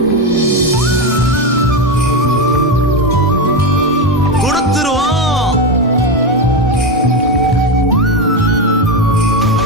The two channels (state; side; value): normal; both; correlation 0.12